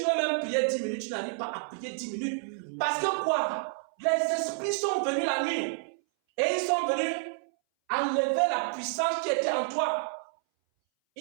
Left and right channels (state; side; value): silent; left; 58 dB below the other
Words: veux même prier 10 minutes, tu n'arrives pas à prier 10 minutes. Parce que quoi? Les esprits sont venus la nuit. Et ils sont venus enlever la puissance qui était en toi.